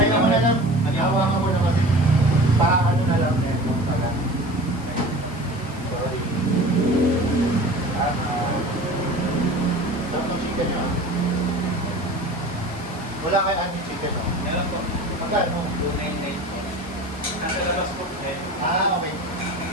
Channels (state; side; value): noise; right; hiss, 25 dB below the sound